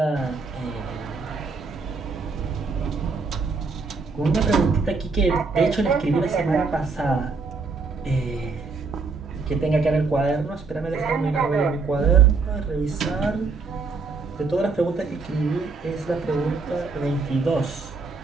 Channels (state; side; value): quieter; left; 4.3 dB